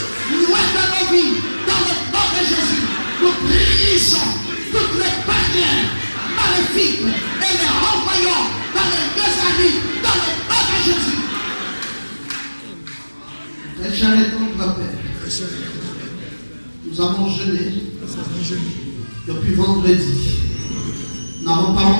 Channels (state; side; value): inverted; both; correlation -1.00